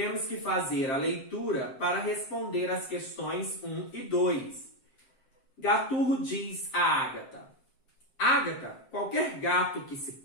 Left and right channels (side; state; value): right; late; 7.6 ms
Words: que fazer a leitura para responder as questões 1 e 2. Gaturro diz a Ágata: Ágata, qualquer gato que se